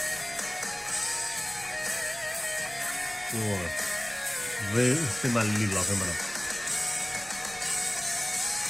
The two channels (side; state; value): right; noise; rumble, 20 dB below the sound